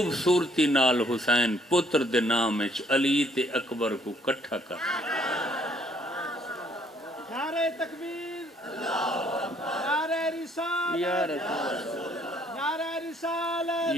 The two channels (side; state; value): both; normal; correlation 0.64